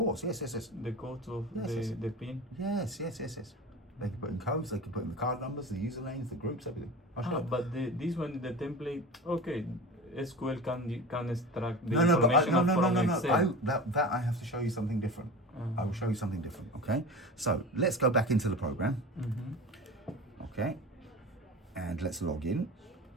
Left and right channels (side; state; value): both; normal; correlation 0.32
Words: Yes. The codes of the pin. Yes. They can put in codes. They can put in the card numbers, the usernames, the groups, everything. But this one, the template. Okay, SQL can extract the information from Excel. That I have to show you something different. I will show you something different. Okay. So let's go back into the program. Okay. And let's log in